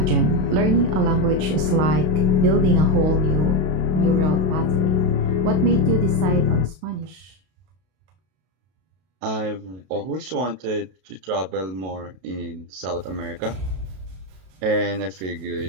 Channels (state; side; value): late; left; 32 ms